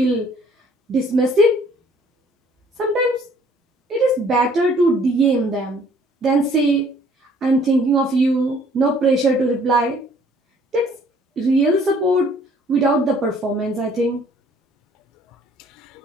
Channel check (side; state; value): both; normal; correlation 0.59